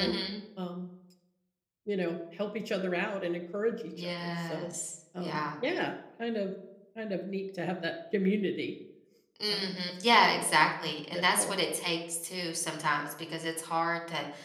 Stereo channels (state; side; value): identical; both; correlation 1.00